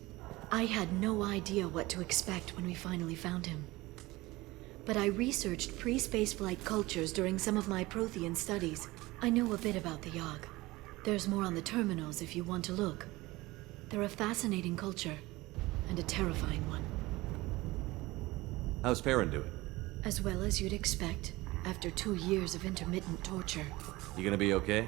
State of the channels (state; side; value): quieter; left; 20.2 dB